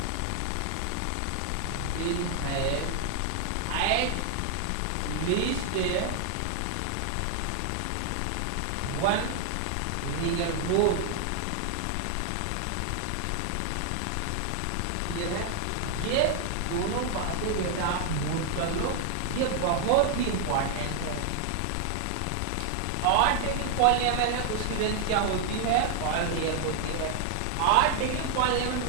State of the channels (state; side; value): different; both; correlation 0.00